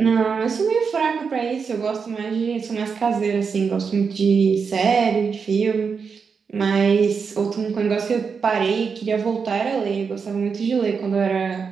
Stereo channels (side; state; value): left; quieter; 5.7 dB